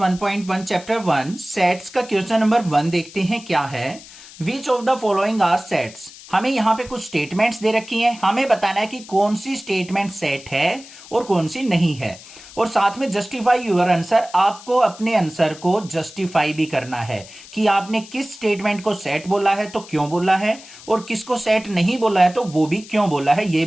चैप्टर 1 सेट्स का क्वेश्चन नंबर 1 देखते हैं क्या है। Which of the following are sets. हमें यहाँ पे कुछ स्टेटमेंट्स दे रखी हैं, हमें बताना है कि कौन सी स्टेटमेंट सेट है और कौन सी नहीं है, और साथ में जस्टिफाई यूर आंसर। आपको अपने आंसर को जस्टिफाई भी करना है कि आपने किस स्टेटमेंट को सेट बोला है तो क्यों बोला है, और किसको सेट नहीं बोला है तो वो भी क्यों बोला है, ये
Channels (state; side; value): noise; left; hiss, 18 dB below the sound